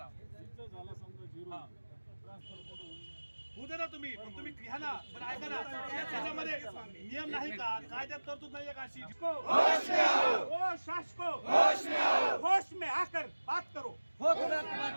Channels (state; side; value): inverted; both; correlation -1.00